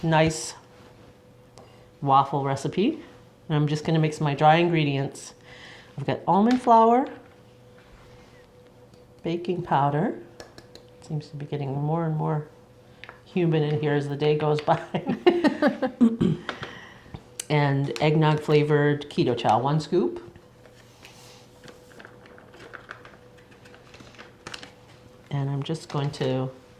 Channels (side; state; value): both; identical; correlation 1.00